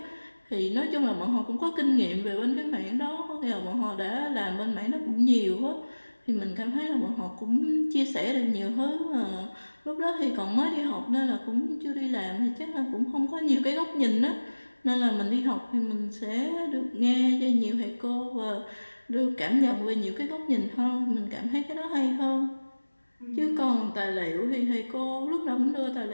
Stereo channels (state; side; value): inverted; both; correlation -1.00